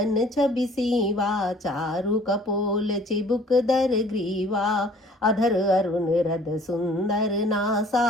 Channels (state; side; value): normal; both; correlation 0.53